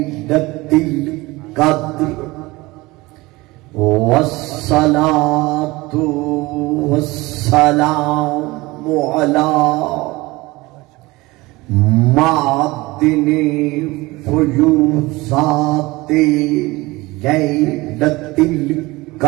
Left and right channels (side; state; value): left; quieter; 21.5 dB